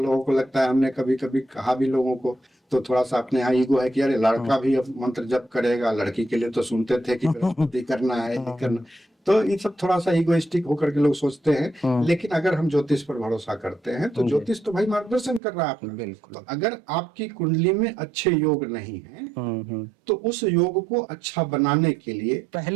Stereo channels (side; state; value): left; drops out; at 15.4 s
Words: को लगता है, हमने कभी कभी कहा भी लोगों को, तो थोड़ा सा अपने यहाँ ईगो है कि अरे लड़का भी अब मंत्र जप करेगा, लड़की के लिए तो सुनते थे कि करना है नहीं करना। तो ये सब थोड़ा सा इगोइस्टिक होकर के लोग सोचते हैं, लेकिन अगर हम ज्योतिष पर भरोसा करते हैं तो ज्योतिष तो भाई मार्गदर्शन कर रहा है आपका। बिल्कुल। तो अगर आपकी कुंडली में अच्छे योग नहीं है तो उस योग को अच्छा बनाने के लिए